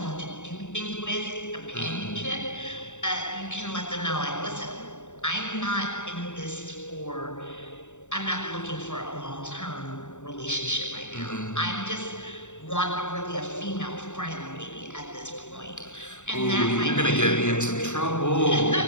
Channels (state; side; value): late; right; 0.84 ms